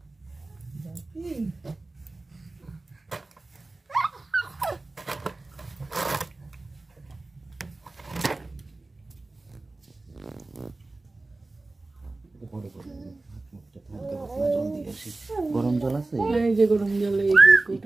বাপি গরম জল আছে? এই যে গরম জল, এই যে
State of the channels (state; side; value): quieter; left; 3.2 dB